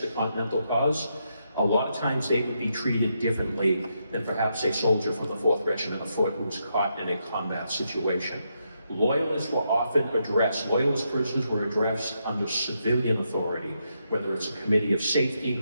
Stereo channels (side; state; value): both; inverted; correlation -0.81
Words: the Continental cause, a lot of times they would be treated differently than perhaps a soldier from the 4th Regiment of Foot who was caught in a combat situation. Loyalists were often addressed, Loyalist prisoners were addressed under civilian authority, whether it's a committee of safety